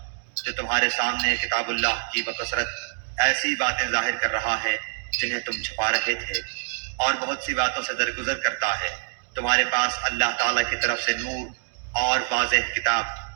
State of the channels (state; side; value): silent; left; digital silence